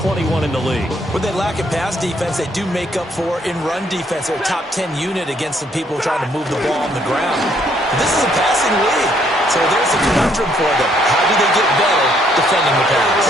in the league. When they lack in pass defense, they do make up for in run defense. They're a top 10 unit against the people trying to move the ball on the ground. But this is a passing league. So there's a conundrum for them. How do they get better defending the pass?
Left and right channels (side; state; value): both; normal; correlation 0.68